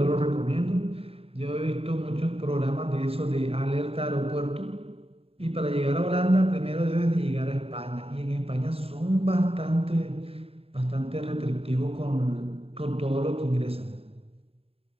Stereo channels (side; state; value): left; late; 0.28 ms